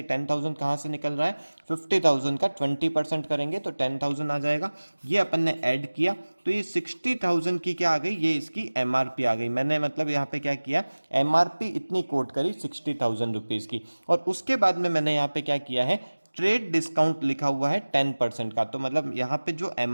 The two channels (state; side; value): inverted; both; correlation -1.00